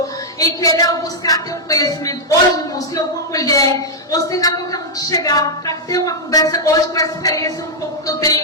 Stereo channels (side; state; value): both; normal; correlation -0.04